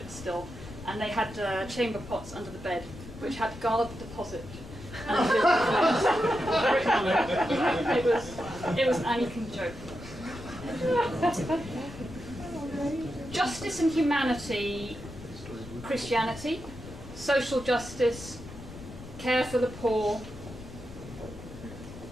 still, and they had chamber pots under the bed, which had guard the deposit. It was an Anglican joke. Justice and humanity, Christianity, social justice, care for the poor,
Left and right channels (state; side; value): noise; left; rumble, 14 dB below the sound